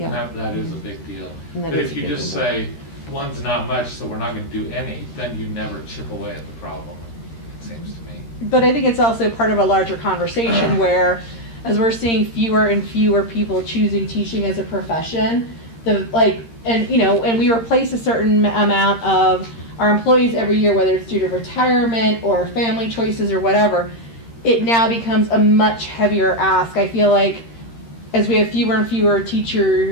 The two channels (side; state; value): right; late; 13 ms